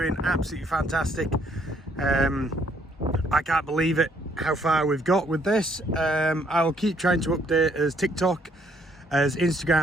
absolutely fantastic. I can't believe it how far we've got with this. I'll keep trying to update as TikTok, as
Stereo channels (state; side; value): normal; both; correlation 0.68